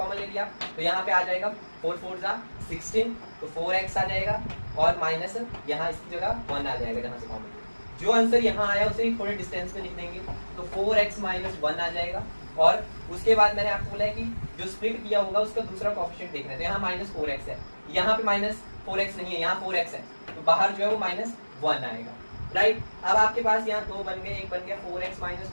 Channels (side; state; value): both; inverted; correlation -1.00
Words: ले लिया तो यहाँ पे आ जाएगा 4 4 16, तो 4x आ जाएगा और माइनस यहाँ इसकी जगह 1 आ जाएगा जहाँ से कॉमन। जो आंसर यहाँ आया उसे थोड़े डिस्टेंस में लिख देंगे तो 4x माइनस 1 आ जाएगा और उसके बाद मैंने आपको बोला है कि जो स्प्लिट किया होगा उसका दूसरा कोएफिशिएंट देखना है। तो यहाँ -4x है, यहाँ पे -4x नहीं है, यहाँ 4x है, तो बाहर जो है वो -1 आएगा, राइट। अब आपके पास यहाँ 2 बन गए, एक बन गया 4x माइनस